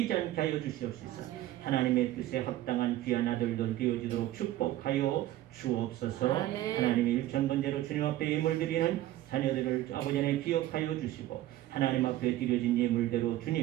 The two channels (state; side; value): quieter; left; 14.6 dB